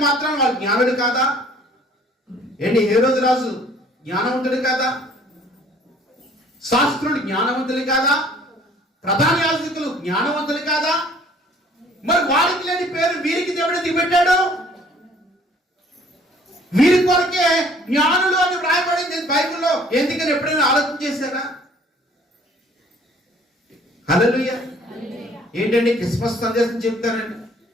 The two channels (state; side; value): normal; both; correlation 0.56